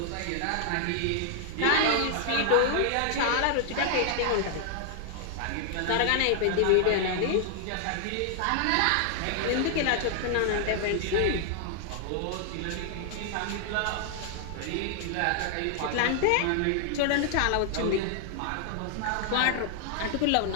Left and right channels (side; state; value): both; different; correlation 0.00